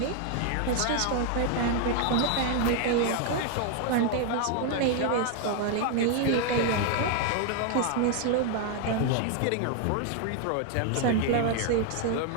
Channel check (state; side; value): different; both; correlation 0.00